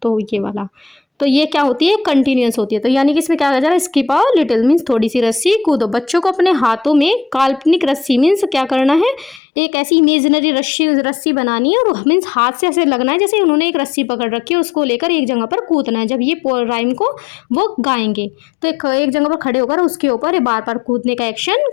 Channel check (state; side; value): drops out; right; at 9.4 s